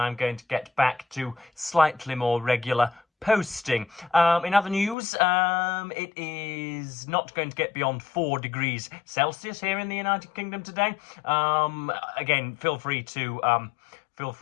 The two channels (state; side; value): drops out; right; at 5.0 s